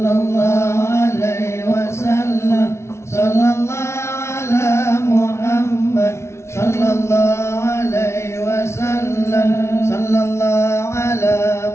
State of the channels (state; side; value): late; right; 0.13 ms